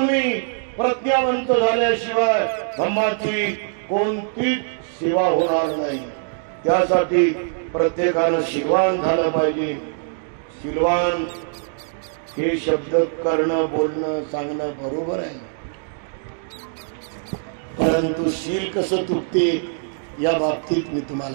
प्रज्ञावंत झाल्याशिवाय धम्माची कोणतीच सेवा होणार नाही. त्यासाठी प्रत्येकानं शीलवान झालं पाहिजे. शीलवान हे शब्द करणं, बोलणं, सांगणं बरोबर आहे, परंतु शील कसं तुटते या बाबतीत मी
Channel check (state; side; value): silent; left; digital silence